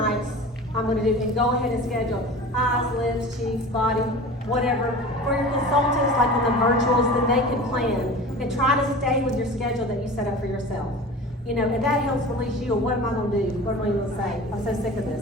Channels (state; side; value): normal; both; correlation 0.36